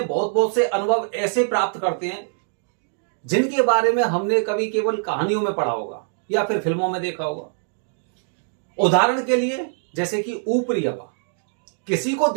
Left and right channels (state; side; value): silent; left; digital silence